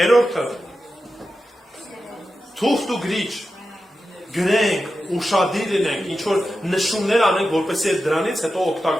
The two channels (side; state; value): both; normal; correlation 0.91